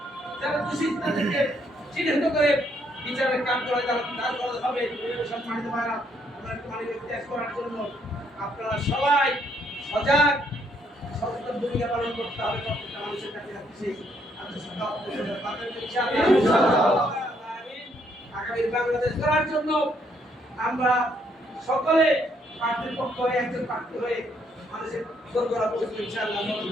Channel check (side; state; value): both; normal; correlation 0.71